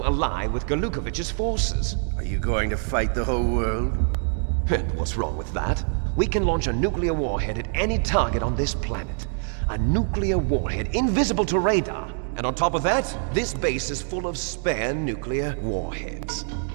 ally with Golukovich's forces. Are you going to fight the whole world? And what's wrong with that? We can launch a nuclear warhead at any target on this planet. A nuclear warhead invisible to radar. And on top of that, this base is full of spare nuclear warheads.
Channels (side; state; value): left; silent; 62 dB below the other